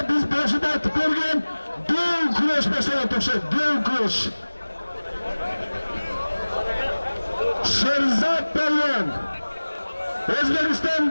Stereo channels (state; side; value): inverted; both; correlation -1.00